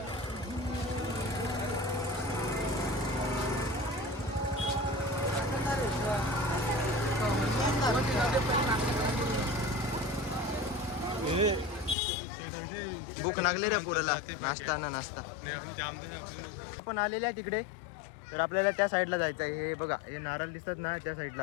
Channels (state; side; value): drops out; right; at 12.0 s